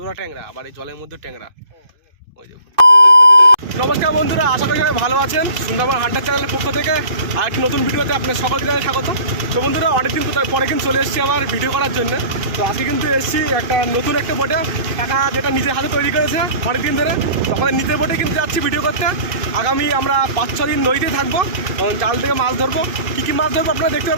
ট্যাংরা, আবার এই জলের মধ্যে ট্যাংরা। ওই দেখুন। নমস্কার বন্ধুরা, আশা করি সবাই ভালো আছেন। সুন্দরবন হান্টার চ্যানেলের পক্ষ থেকে আর একটি নতুন ভিডিওতে আপনার সকলকে জানাই স্বাগত। তো বন্ধুরা, অনেকদিন পরে কিন্তু চলে এসেছি আবার ভিডিও করার জন্য। তো আজকে কিন্তু এসেছি নতুন একটা বোটে, কাকা যেটা নিজের হাতে তৈরি করেছে অনেকদিন ধরে। তো আমাদের নিজের বোটে কিন্তু যাচ্ছি ভিডিও করতে। আগামী আমরা 5-6 দিন নদীতে থাকবো, জাল থেকে মাছ ধরবো। কী কী মাছ ধরবো আপনারা দেখতে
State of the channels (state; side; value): late; left; 2.5 ms